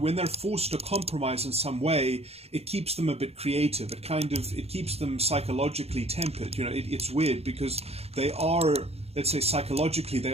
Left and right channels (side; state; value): left; late; 0.30 ms